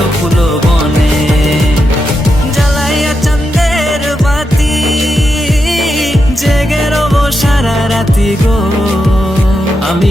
ফুল বনে। জ্বালাইয়া চাঁদের বাতি জেগে রব সারা রাতি গো,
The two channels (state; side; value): normal; both; correlation 0.86